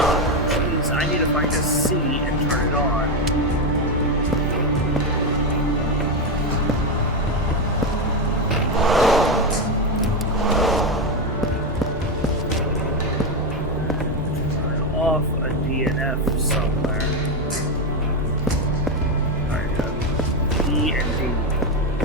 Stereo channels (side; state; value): both; normal; correlation 0.09